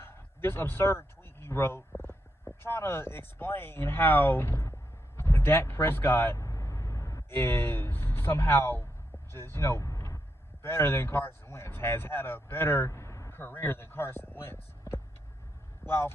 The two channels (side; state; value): both; normal; correlation 0.82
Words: absurd tweet he wrote trying to explain how Dak Prescott is somehow just, better than Carson Wentz, has had a better career than Carson Wentz. While